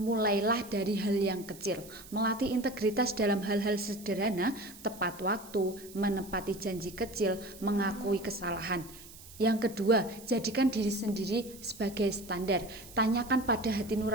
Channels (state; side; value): noise; right; hiss, 18 dB below the sound